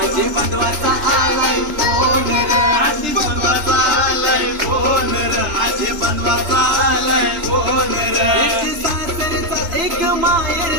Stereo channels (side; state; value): left; late; 3.3 ms